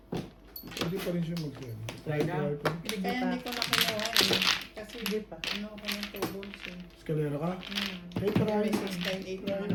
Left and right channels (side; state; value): both; identical; correlation 1.00